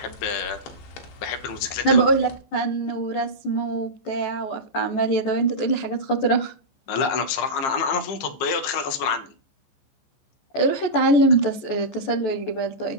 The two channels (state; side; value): late; right; 15 ms